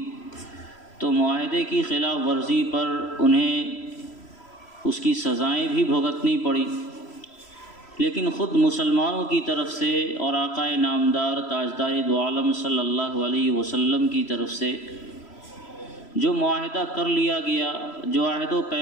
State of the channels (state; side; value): late; right; 3.0 ms